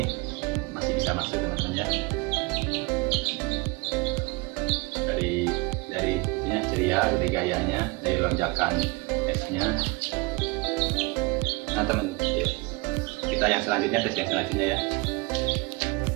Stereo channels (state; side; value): quieter; left; 25.9 dB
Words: masih bisa masuk teman-teman ya. Dari itunya ceria, dari gayanya, dari lonjakan esnya. Nah teman, ya, kita yang selanjutnya, tes yang selanjutnya ya.